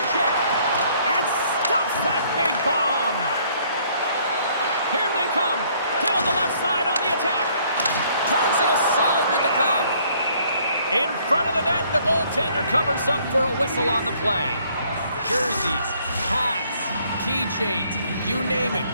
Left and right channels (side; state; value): both; inverted; correlation -0.63